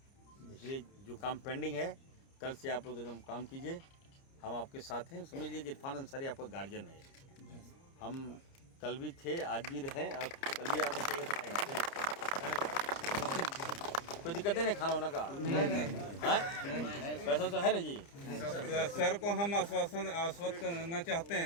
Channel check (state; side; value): late; right; 30 ms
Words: इसलिए जो काम पेंडिंग है, कल से आप लोग एकदम काम कीजिए, हम आपके साथ हैं। समझ लीजिए कि इरफान अंसारी आपका गार्जियन है। हम कल भी थे, आज भी रहे, और कल भी आपको चाहिए तो आएंगे। कोई दिक्कत नहीं खाना वाना का? नहीं, पैसा तो है ना जी। सर को हम आश्वस्त करना चाहते